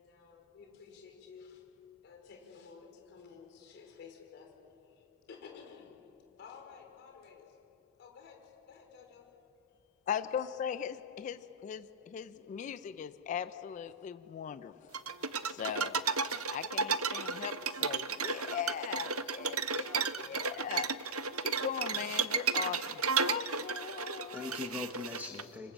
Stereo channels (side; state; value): both; normal; correlation -0.12